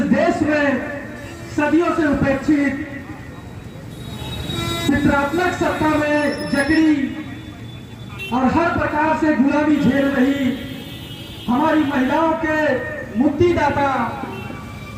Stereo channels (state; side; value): identical; both; correlation 1.00